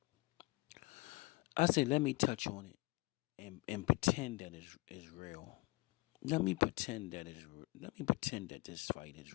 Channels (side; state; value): right; quieter; 23.6 dB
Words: I said, let me touch on it and pretend that it's real. Let me pretend that this fight is